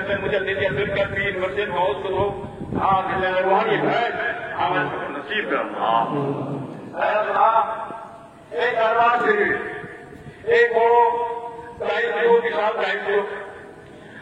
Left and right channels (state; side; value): identical; both; correlation 1.00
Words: मुझे दीजिए फिर कर पीर मस्जिद बहुत तो हाँ दिल रूहानी है आवाज नसीब अल्लाह है अल्लाह एक दरबार शरीफ एक बड़ो दायित्व विशाल